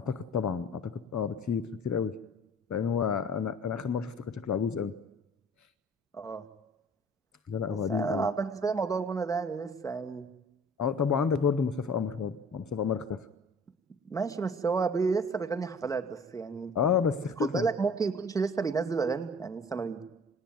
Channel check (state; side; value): normal; both; correlation 0.47